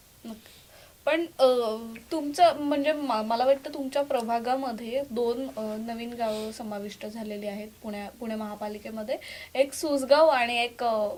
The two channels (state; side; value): identical; both; correlation 1.00